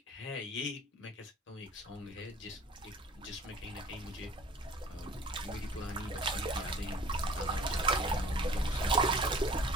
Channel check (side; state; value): both; normal; correlation 0.47